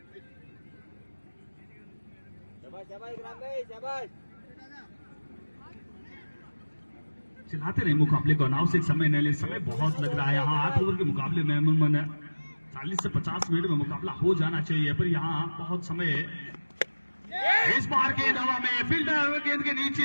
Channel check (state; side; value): inverted; both; correlation -1.00